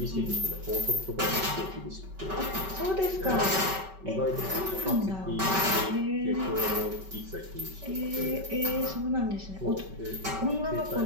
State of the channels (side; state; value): left; late; 5.2 ms